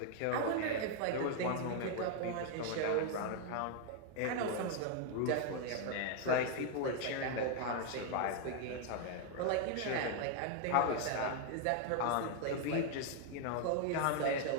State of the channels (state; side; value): different; both; correlation 0.00